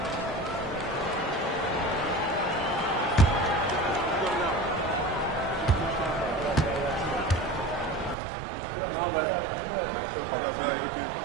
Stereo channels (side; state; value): left; drops out; at 8.2 s